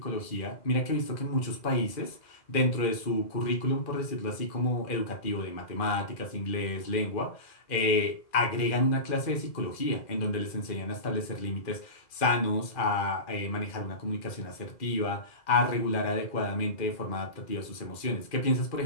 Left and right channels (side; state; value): right; late; 2.4 ms